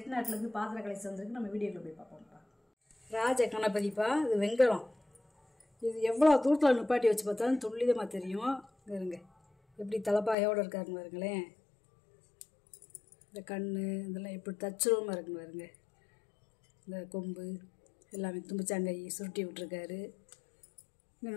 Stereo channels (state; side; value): drops out; right; at 10.4 s